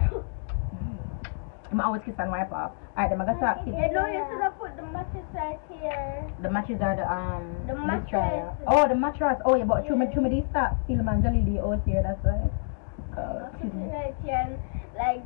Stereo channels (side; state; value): right; silent; digital silence